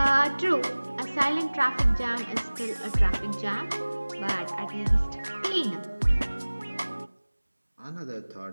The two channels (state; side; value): inverted; both; correlation -1.00